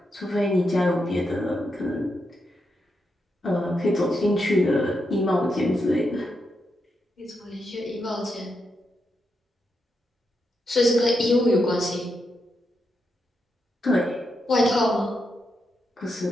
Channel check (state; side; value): normal; both; correlation 0.84